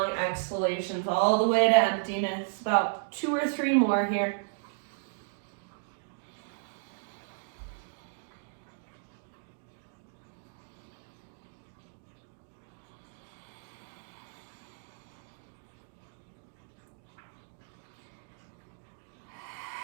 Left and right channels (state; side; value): silent; left; digital silence